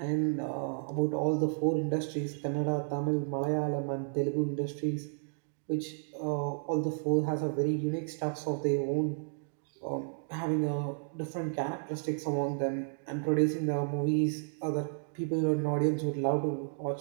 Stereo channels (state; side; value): silent; left; digital silence